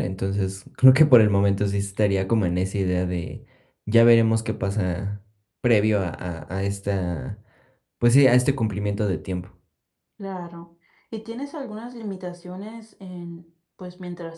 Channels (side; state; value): both; identical; correlation 1.00